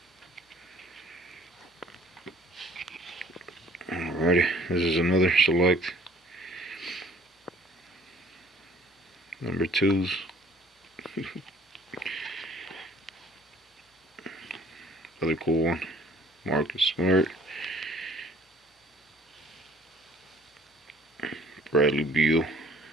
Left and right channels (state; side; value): normal; both; correlation 0.55